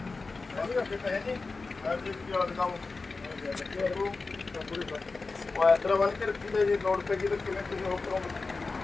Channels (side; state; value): right; quieter; 3.9 dB